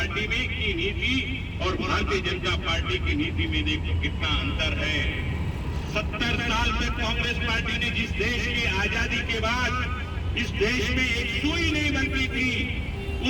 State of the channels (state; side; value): identical; both; correlation 1.00